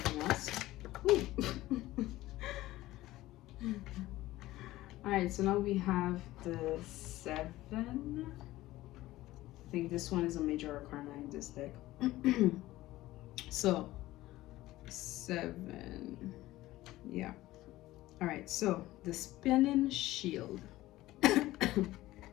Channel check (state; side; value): quieter; right; 16.8 dB